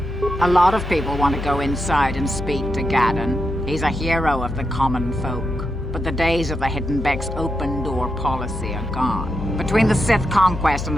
A lot of people want to go inside and speak to Gadon. He's a hero of the common folk. But the days of the Hidden Beck's open-door policy are gone. Between the Sith conquest and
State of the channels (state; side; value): noise; left; hum, 7 dB below the sound